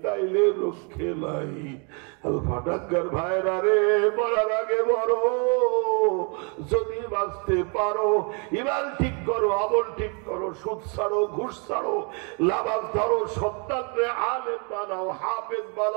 তাইলে রক্ষে নাই। আলফাডাঙ্গার ভাইরা রে, মরার আগে বড়, যদি বাঁচতে পারো ইমান ঠিক করো, আমল ঠিক করো, সুদ ছাড়ো, ঘুষ ছাড়ো, লাভাজ ধরো, সন্তানরে আলেম বানাও, হাফেজ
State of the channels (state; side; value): quieter; left; 35.7 dB